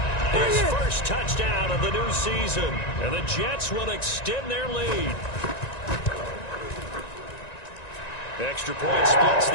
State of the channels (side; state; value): right; late; 1.9 ms